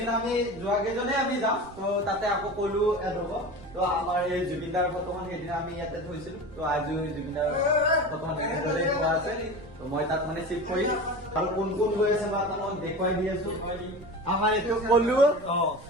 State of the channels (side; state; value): right; noise; rumble, 20 dB below the sound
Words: আমি যোৱা কেইজনে আমি যাম তো তাতে আকৌ কলো এড হ'ব তো আমাৰ এই জুবিনদাৰ ফটোখন সেইদিন আমি ইয়াতে থৈছিলো তো আজি জুবিনদাৰ ফটোখন এনেদৰে থোৱা আছে তো মই তাত মানে চিফ কৰিম আৰু কোন কোন গৈ আছে বা আপোনাক দেখুৱাই দি আছো আমাৰ এইটো কলো